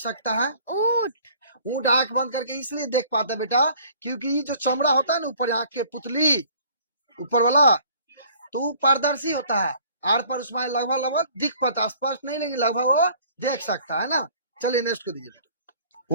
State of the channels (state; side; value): inverted; both; correlation -0.53